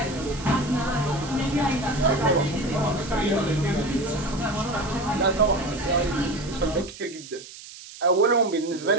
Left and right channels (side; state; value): right; noise; hiss, 16 dB below the sound